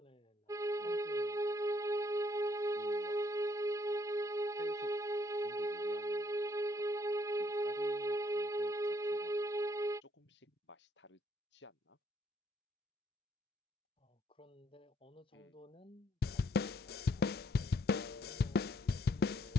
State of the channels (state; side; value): normal; both; correlation 0.70